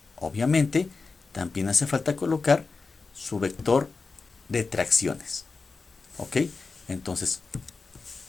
Obviamente, también hace falta colocar su vector de tracciones. ¿Ok? Entonces,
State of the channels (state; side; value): quieter; right; 4.3 dB